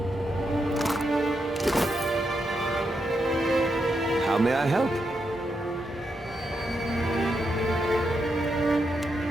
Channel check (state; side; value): normal; both; correlation 0.83